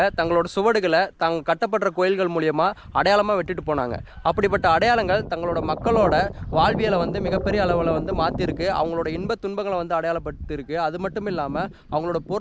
தங்களோட சுவடுகளை கட்டப்படுற கோயில்கள் மூலியமாக அடையாளமாக விட்டுட்டு போனாங்க. அப்படிப்பட்ட அடையாளங்கள் தங்களோட மக்களோட வாழ்வியலை மிகப்பெரிய அளவில் மாற்றிருக்கு. அவங்களோட இன்ப துன்பங்களை அடையாளப்படுத்திருக்கு. அது மட்டும் இல்லாமல் அவங்களோட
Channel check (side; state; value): both; identical; correlation 1.00